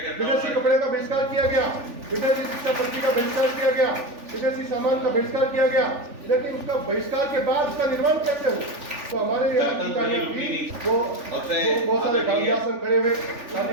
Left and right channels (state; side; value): late; left; 3.4 ms